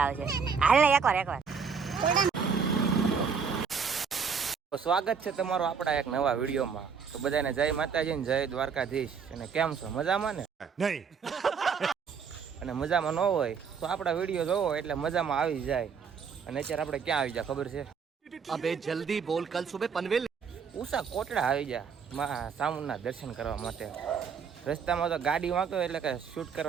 આવે છે. હાલ ને એકવાર સ્વાગત છે તમારું આપણા એક નવા વિડીયોમાં. તો બધાને જય માતાજી ને જય દ્વારકાધીશ. અને કેમ છો મજામાં ને? નહીં. અને મજામાં ન હોય તો આપણા વિડીયો જોવો એટલે મજામાં આવી જાય. અને અત્યારે આપણે ક્યાં આવી જાય ખબર છે? અબે જલ્દી બોલ, કલ સુબહ પનવેલ ઉષા કોટડા આવી જાય મા સામુના દર્શન કરવા માટે. રસ્તામાં તો ગાડી વાંકો એટલે કે શૂટ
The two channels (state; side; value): quieter; left; 6.1 dB